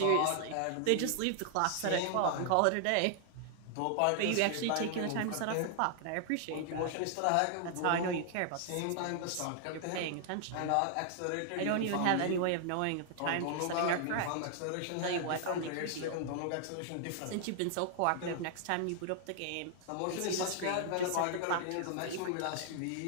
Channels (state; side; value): different; both; correlation 0.00